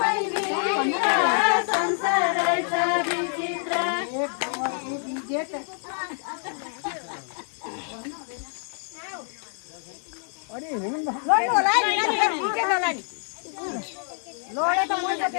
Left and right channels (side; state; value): right; silent; 58 dB below the other